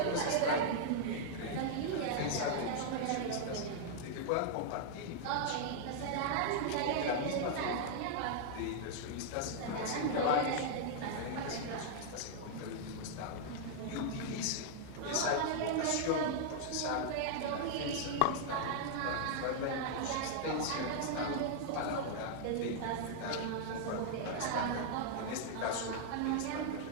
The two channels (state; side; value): different; both; correlation -0.01